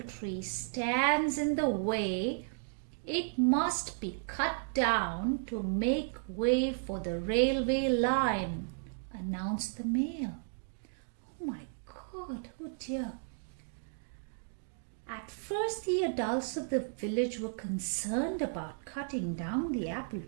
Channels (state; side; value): silent; left; digital silence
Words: tree stands in the way, it must be cut down to make way for the railway line, announced the mayor. Oh my God, oh dear. At first, the adults of the village were concerned about cutting down the apple